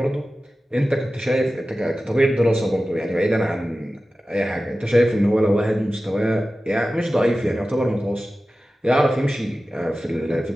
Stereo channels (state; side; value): normal; both; correlation 0.95